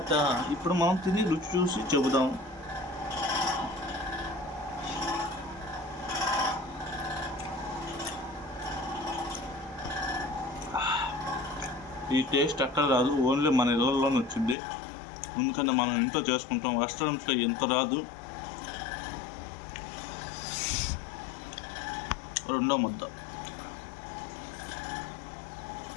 ఇప్పుడు మనం తిని రుచి చూసి చెబుదాం. ఈ టేస్ట్ ఎక్కడ రాదు, ఓన్లీ మన ఇళ్ళల్లోనే వచ్చింది. ఎందుకంటే మనం ఇంట్లో చేసుకుంటాం, రెస్టారెంట్లో ఎంత రాదు. రెండో ముద్ద.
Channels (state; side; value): drops out; right; at 14.6 s